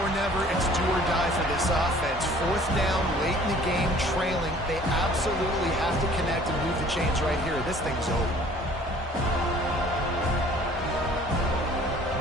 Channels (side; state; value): both; normal; correlation 0.53